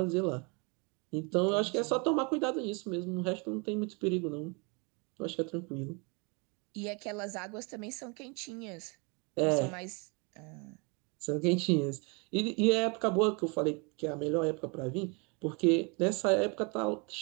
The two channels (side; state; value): left; quieter; 31.4 dB